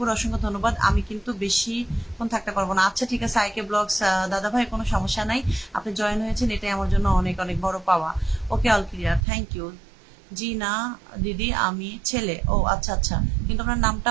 অসংখ্য ধন্যবাদ। আমি কিন্তু বেশিক্ষণ থাকতে পারবো না। আচ্ছা ঠিক আছে আইকে ব্লগস দাদা ভাই, কোনো সমস্যা নাই, আপনি জয়েন হয়েছেন এটাই আমার জন্য অনেক অনেক বড় পাওয়া। ওকে, অল ক্লিয়ার, থ্যাংক ইউ। জি না দিদি, আমি ছেলে। ও আচ্ছা আচ্ছা, কিন্তু আপনার নামটা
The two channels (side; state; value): left; drops out; at 9.2 s